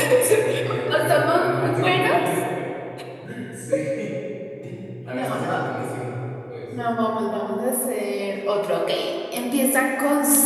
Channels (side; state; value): both; identical; correlation 1.00